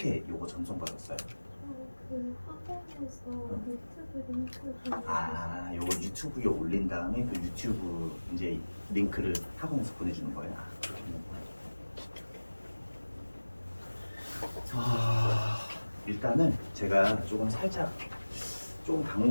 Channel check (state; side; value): inverted; both; correlation -1.00